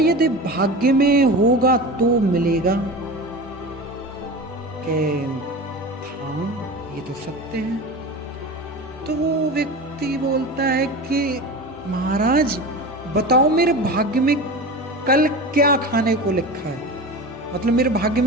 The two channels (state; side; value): normal; both; correlation 0.30